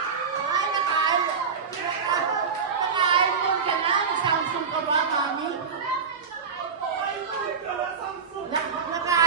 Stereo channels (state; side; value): quieter; left; 5.8 dB